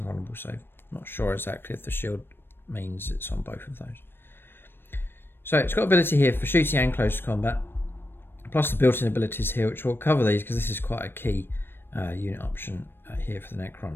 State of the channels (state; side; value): late; right; 0.10 ms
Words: save. Not sure exactly if the shield means it's on both of those. So it's got ability here for shooting and close combat, plus the built-in abilities here, which will cover these because this is quite a key unit option here for the